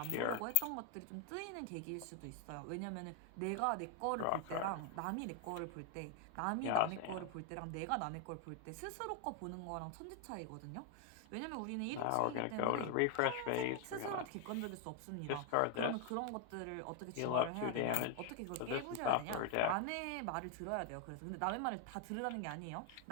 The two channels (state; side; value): different; both; correlation 0.01